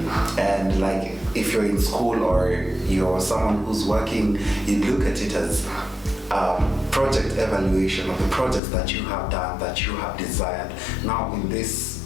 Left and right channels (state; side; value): drops out; right; at 8.6 s